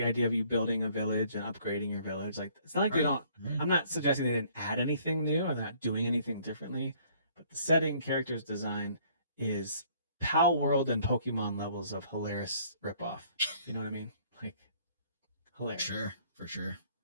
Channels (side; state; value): both; inverted; correlation -0.60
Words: idea of you building a village and upgrading your village. Like it's not like they Right. don't. Right. I'm not suggesting they didn't add anything new. I'm not doing anything differently. But the setting, characters design is Pal World and Pokemon levels of hilarious ripoff. You know what I mean? Like hilarious. Sure, for sure.